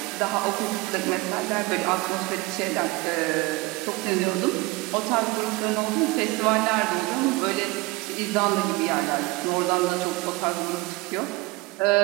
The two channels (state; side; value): quieter; left; 22.7 dB